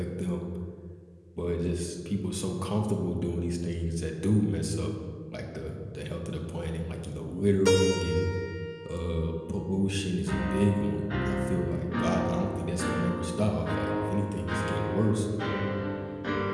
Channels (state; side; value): identical; both; correlation 1.00